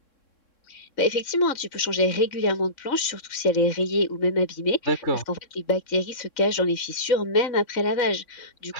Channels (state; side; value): late; right; 3.6 ms